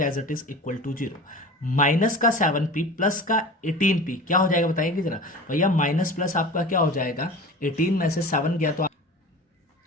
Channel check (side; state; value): both; normal; correlation 0.35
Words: as it is equal to 0। Minus का 7P प्लस का 18P क्या हो जाएगा बताइए जरा भैया, माइनस प्लस आपका क्या हो जाएगा, 18 में से 7 गया तो